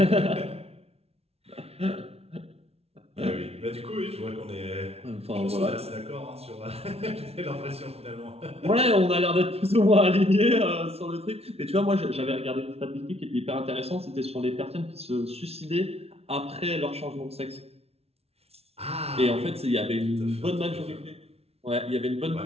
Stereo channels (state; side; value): late; left; 0.30 ms